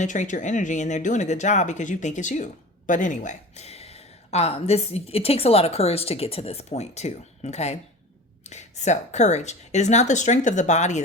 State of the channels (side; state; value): both; normal; correlation 0.36